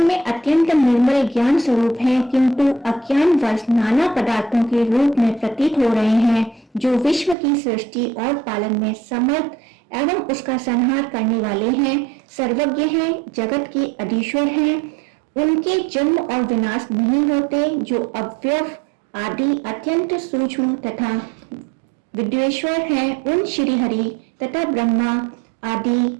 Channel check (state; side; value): drops out; left; at 7.4 s